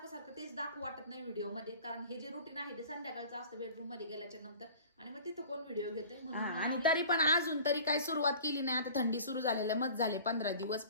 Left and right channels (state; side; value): inverted; both; correlation -0.43